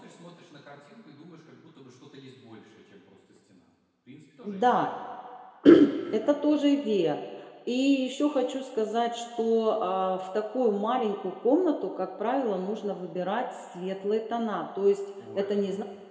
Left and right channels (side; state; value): both; identical; correlation 1.00